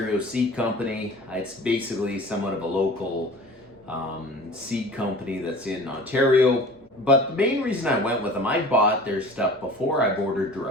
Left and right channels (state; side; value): normal; both; correlation 0.42